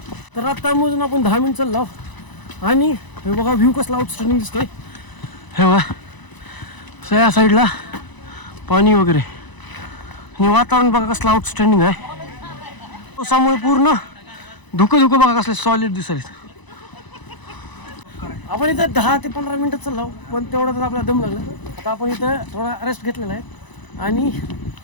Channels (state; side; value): late; right; 1.0 ms